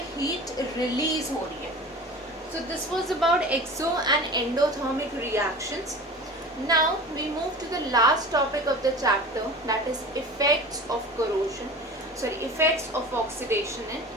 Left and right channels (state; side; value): normal; both; correlation 0.36